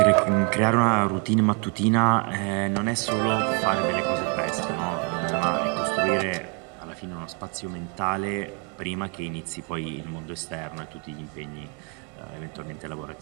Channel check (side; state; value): left; quieter; 33.9 dB